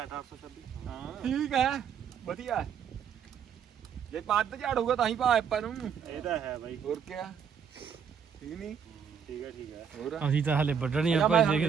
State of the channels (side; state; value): left; quieter; 7.4 dB